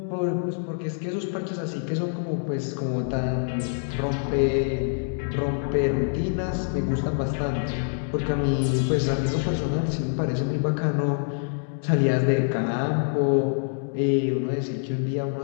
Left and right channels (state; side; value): silent; right; digital silence